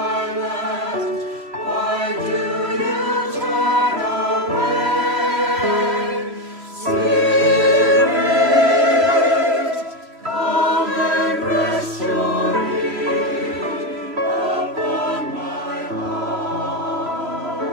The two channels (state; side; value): late; left; 3.0 ms